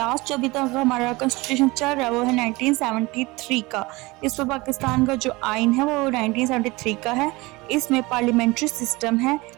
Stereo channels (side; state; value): left; quieter; 22.5 dB